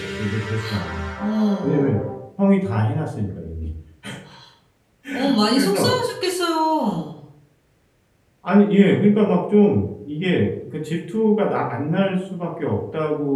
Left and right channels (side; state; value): both; identical; correlation 1.00